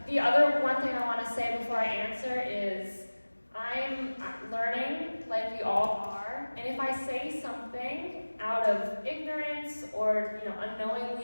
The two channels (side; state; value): both; inverted; correlation -1.00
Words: The other one thing I want to say before I answer is I'm learning, like we all are, and if I say something out of ignorance or